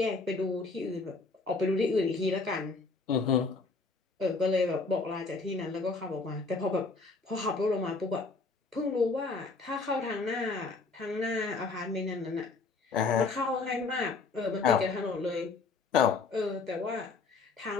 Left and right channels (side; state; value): right; quieter; 4.2 dB